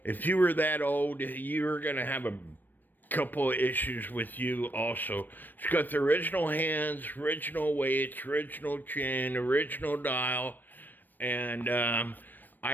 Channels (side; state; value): right; late; 0.091 ms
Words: if you were that old, you were going to have a couple of issues with you also. It's got the original hands, original weights, original chain, original dial. And